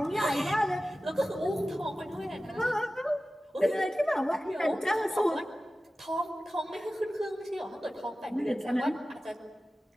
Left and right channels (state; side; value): normal; both; correlation 0.95